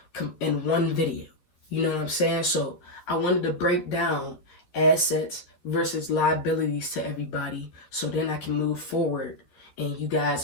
in one video. You know what I'm saying? So I wanted to break down assets versus liabilities to everybody so then I can move forward and you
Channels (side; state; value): right; late; 12 ms